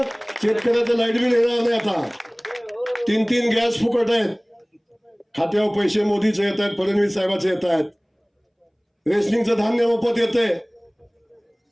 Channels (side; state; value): both; identical; correlation 1.00